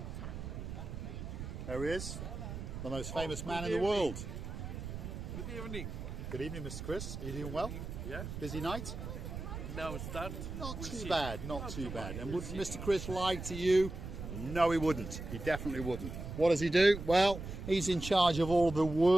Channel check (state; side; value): noise; right; rumble, 7 dB below the sound